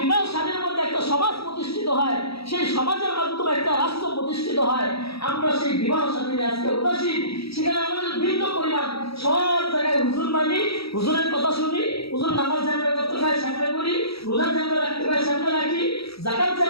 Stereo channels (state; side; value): late; right; 0.77 ms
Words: বিবাহ শাদীর মধ্যে একটা সমাজ প্রতিষ্ঠিত হয়, সেই সমাজের মাধ্যমে একটা রাষ্ট্র প্রতিষ্ঠিত হয়। আমরা সেই বিবাহ শাদী আজকে উদাসীন, সেখানে আমাদের ভিন্ন পরিমাণ সব জায়গায় হুজুর মানি, হুজুরের কথা শুনি, হুজুর নামাজ জানবে করতে হয় সামনে করি, রোজা জানবে রাখতে হয় সামনে রাখি, যাকাত